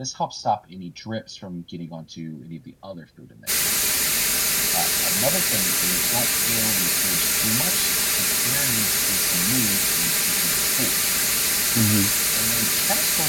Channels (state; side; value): identical; both; correlation 1.00